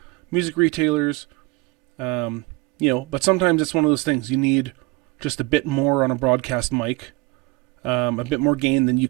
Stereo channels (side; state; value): left; quieter; 22.5 dB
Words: music retailers. But sometimes it's one of those things. You need just a bit more on a broadcast mic. a bit more gain than you